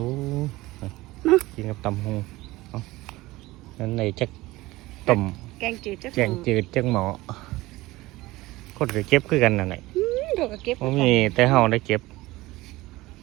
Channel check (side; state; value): left; quieter; 19.3 dB